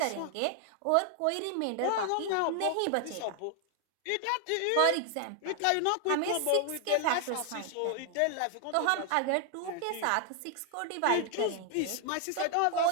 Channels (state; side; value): different; both; correlation 0.00